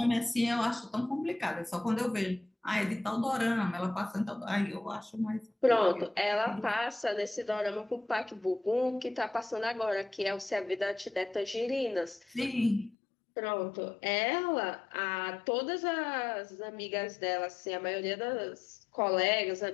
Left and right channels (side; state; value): right; drops out; at 13.0 s